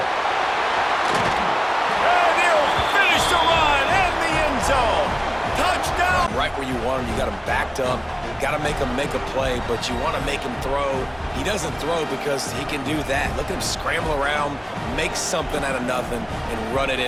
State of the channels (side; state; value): both; identical; correlation 1.00